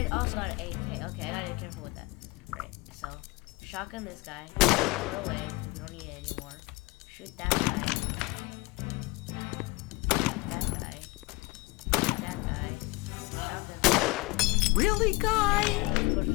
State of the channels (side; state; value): right; quieter; 23.3 dB